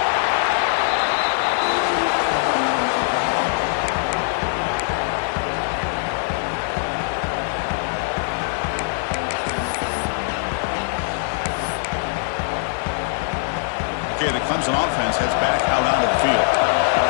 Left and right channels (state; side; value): silent; right; 58 dB below the other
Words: Okay, the Clemson offense heads back out onto the field.